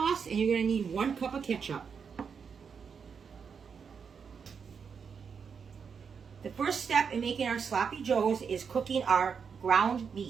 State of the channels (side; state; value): left; quieter; 6.3 dB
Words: and you're going to need 1 cup of ketchup. The first step in making our sloppy joes is cooking our ground